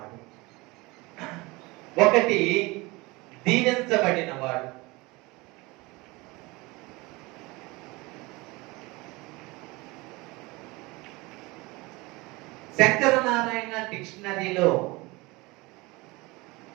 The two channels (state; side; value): quieter; left; 23.4 dB